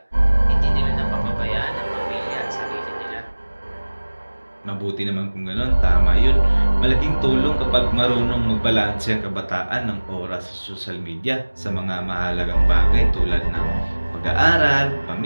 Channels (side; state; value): both; inverted; correlation -1.00